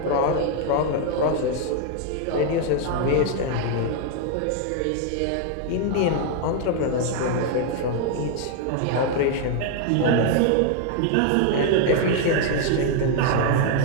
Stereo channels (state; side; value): different; both; correlation 0.00